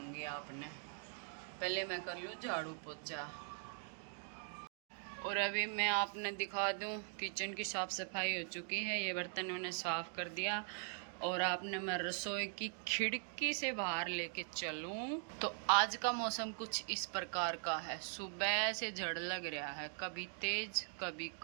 आपने। पहले मैं कर लूँ झाड़ू पोछा। और अभी मैं आपने दिखा दूँ, किचन की साफ़ सफाई हो चुकी है। ये बर्तन मैंने साफ़ कर दिया। और आपने मैं रसोई की खिड़की से बाहर लेके चलूं तो आज का मौसम कुछ इस प्रकार का है। सुबह से झड़ लग रहा है, कभी तेज कभी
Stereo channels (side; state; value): left; silent; 50 dB below the other